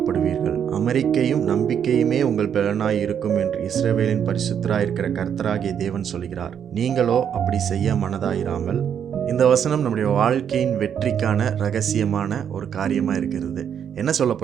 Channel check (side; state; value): left; quieter; 8.4 dB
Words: அமெரிக்கையும் நம்பிக்கையுமே உங்கள் பலனாய் இருக்கும் என்று இஸ்ரவேலின் பரிசுத்தராயிருக்கிற கர்த்தராகிய தேவன் சொல்கிறார். நீங்களோ அப்படி செய்ய மனதாயிராமல். இந்த வசனம் நம்முடைய வாழ்க்கையின் வெற்றிக்கான ரகசியமான ஒரு காரியமாக இருக்கிறது. என்ன